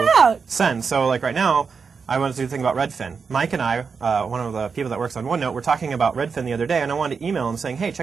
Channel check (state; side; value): quieter; left; 5.5 dB